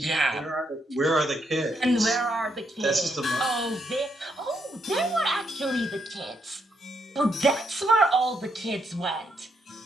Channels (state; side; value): normal; both; correlation 0.77